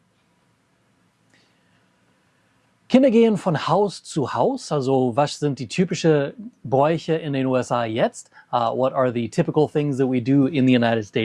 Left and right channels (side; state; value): both; identical; correlation 1.00